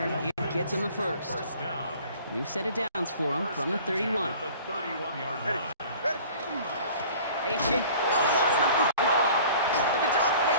it gets him the 1st. First down. New set of downs for him from the 31. At the 31-yard line. H.A. Oh, he lost the football. But the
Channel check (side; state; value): both; inverted; correlation -0.47